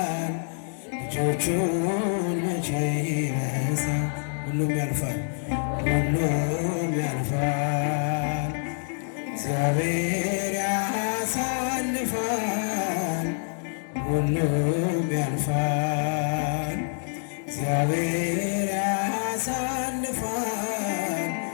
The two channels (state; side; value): silent; right; digital silence